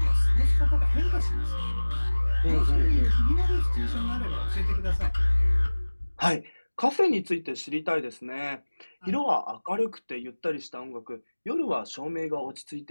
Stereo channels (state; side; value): inverted; both; correlation -1.00